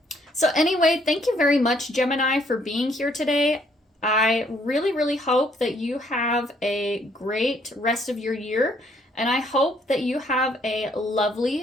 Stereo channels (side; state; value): both; normal; correlation 0.67